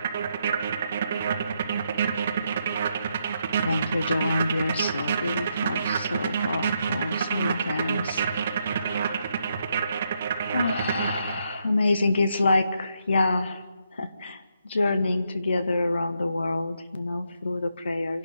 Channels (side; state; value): both; inverted; correlation -0.78